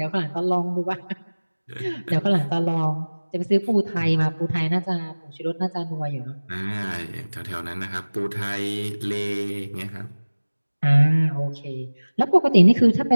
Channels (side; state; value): both; inverted; correlation -1.00